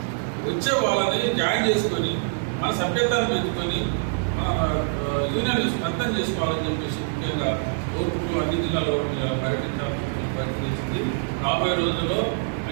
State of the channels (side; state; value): left; silent; digital silence